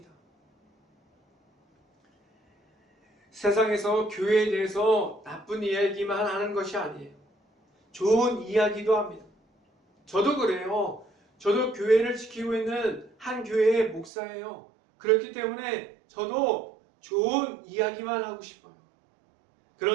세상에서 교회에 대해서 나쁜 이야기만 하는 것이 아니에요. 좋은 이야기도 합니다. 저도 그래요. 저도 교회를 지키고 있는 한 교회의 목사예요. 그렇기 때문에 저도 좋은 이야기만 하고 싶어요.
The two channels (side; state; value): left; drops out; at 14.1 s